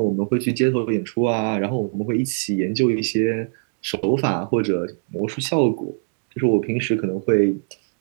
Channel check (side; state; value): left; silent; digital silence